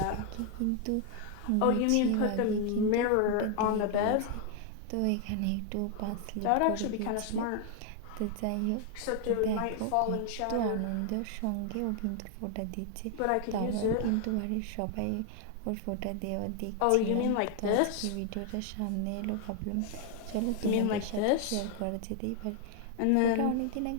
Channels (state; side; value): different; both; correlation 0.00